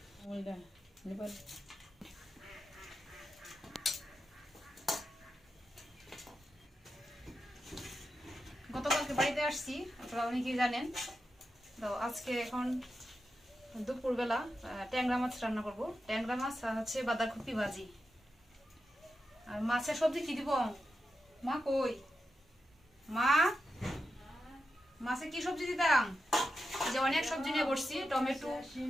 গতকালকে বাড়িতে আসছি, আপনারা অনেকেই জানেন। তো আজকে এখন দুপুরবেলা ট্যাংরা মাছ রান্না করব। ট্যাংরা মাছ আর হচ্ছে বাঁধাকপি ভাজি। আর মাছের সবজি কি দিব? মা কই? মা, মাছে কি সবজি দিতাম? যে অনেক সবজি নিয়ে বসছি, টমেটো,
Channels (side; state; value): both; normal; correlation 0.89